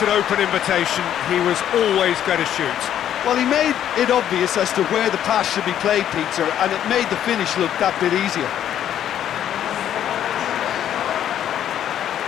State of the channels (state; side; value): quieter; right; 10.5 dB